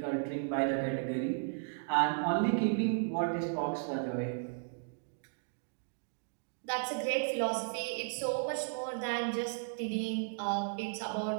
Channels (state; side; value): silent; left; digital silence